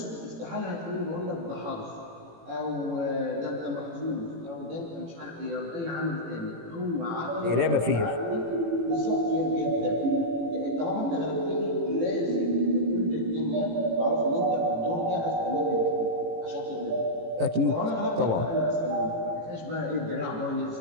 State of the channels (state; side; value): late; left; 18 ms